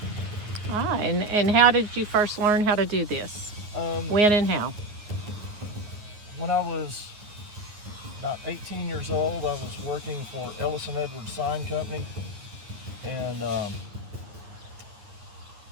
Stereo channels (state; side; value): late; left; 9.9 ms